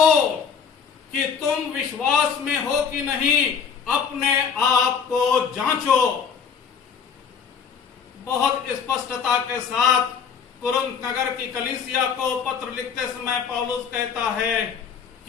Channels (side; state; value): right; quieter; 6.7 dB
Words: कि तुम विश्वास में हो कि नहीं, अपने आप को जांचो। बहुत स्पष्टता के साथ कुरिन्थ नगर की कलीसिया को पत्र लिखते समय पौलुस कहता है